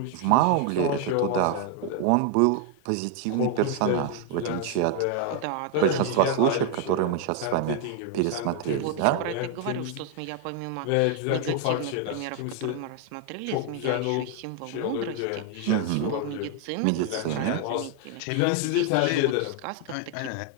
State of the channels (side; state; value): both; different; correlation 0.01